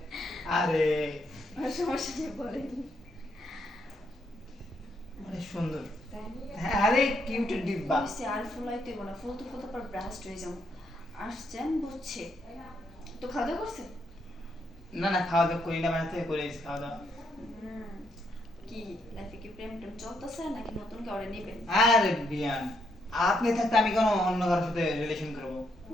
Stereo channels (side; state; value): both; normal; correlation 0.76